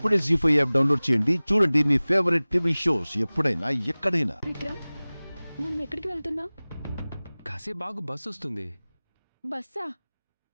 జీ5 యాప్ డౌన్లోడ్ చేయండి. చూడండి మీ ఫేవరెట్ టీవీ షోస్ ఎప్పుడైనా ఎక్కడైనా. విక్రమ్, మనం ఎక్కడికి వెళ్తున్నాం? కాసేపు బాగు బస్సు వస్తుంది. బస్సా?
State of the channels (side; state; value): both; inverted; correlation -0.99